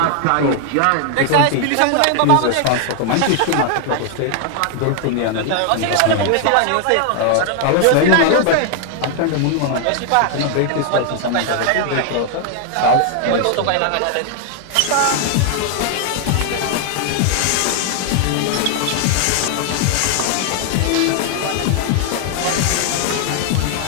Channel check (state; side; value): different; both; correlation 0.00